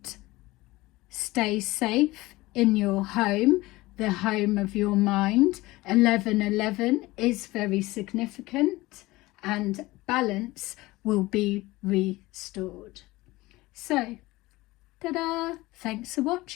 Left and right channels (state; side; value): quieter; right; 19.8 dB